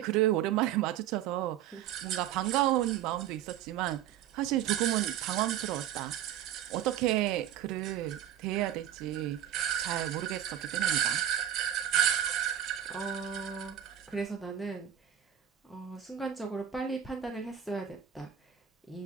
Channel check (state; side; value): quieter; left; 10.8 dB